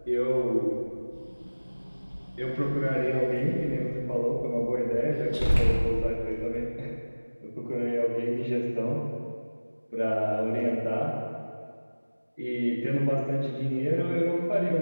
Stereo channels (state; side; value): inverted; both; correlation -1.00